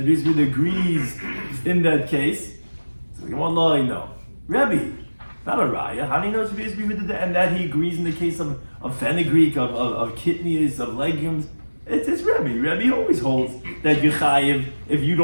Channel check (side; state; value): both; inverted; correlation -1.00